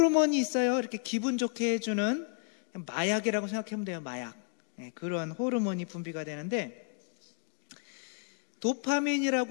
있어요. 이렇게 기분 좋게 해주는 마약이라고 생각하면 돼요. 마약. 그러한 호르몬이 분비가 되는데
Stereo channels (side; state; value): right; quieter; 38.5 dB